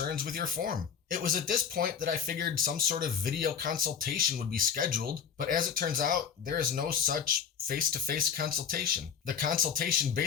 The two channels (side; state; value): right; quieter; 7.3 dB